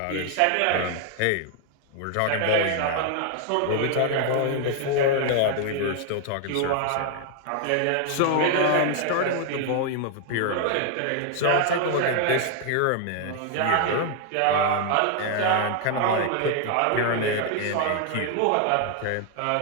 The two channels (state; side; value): different; both; correlation 0.00